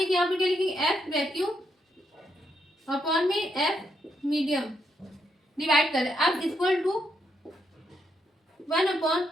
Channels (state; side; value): normal; both; correlation 0.79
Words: यहाँ पर क्या लिखेंगे, एफ वैक्यूम अपॉन में एफ मीडियम, डिवाइड करें। अब equal to